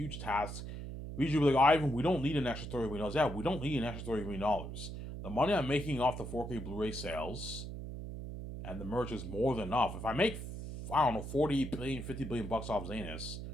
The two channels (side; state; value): right; noise; hum, 8 dB below the sound